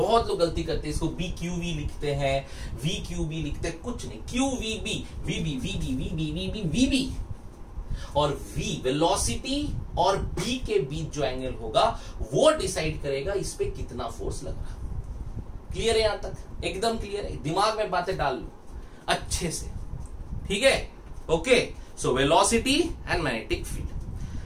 लोग गलती करते हैं, इसको BQV लिखते हैं, VQB लिखते हैं, कुछ नहीं, QVB, VB, VB, VB, VB, VB। और V वेलोसिटी और B के बीच जो एंगल होगा वो डिसाइड करेगा इस पे कितना फोर्स लग रहा। क्लियर है? यहां तक एकदम क्लियर है? दिमाग में बातें डाल लो अच्छे से, ठीक है। Okay, so velocity and magnetic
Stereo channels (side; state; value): both; identical; correlation 1.00